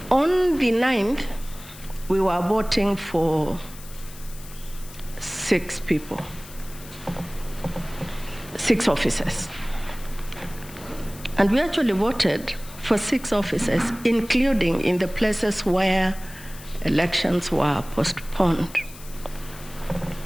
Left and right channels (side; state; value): left; noise; hiss, 18 dB below the sound